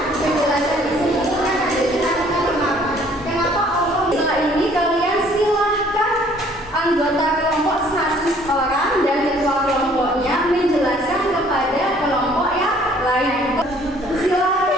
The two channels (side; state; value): both; normal; correlation 0.58